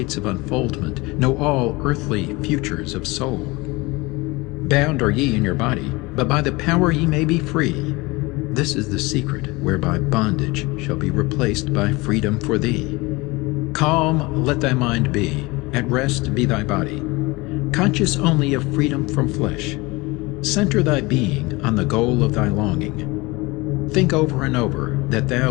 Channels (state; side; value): quieter; right; 23.5 dB